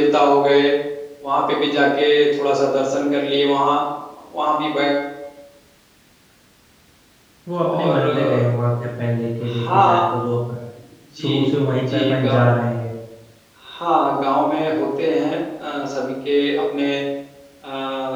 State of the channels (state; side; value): identical; both; correlation 1.00